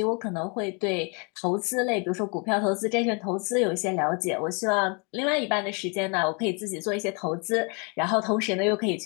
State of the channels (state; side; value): quieter; right; 33.5 dB